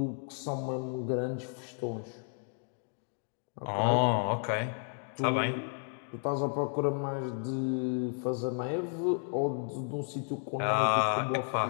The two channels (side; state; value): right; silent; 56 dB below the other